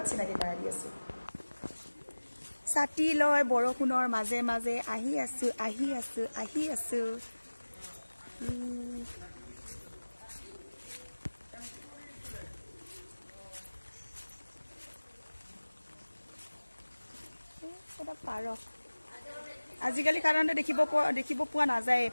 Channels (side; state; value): both; inverted; correlation -1.00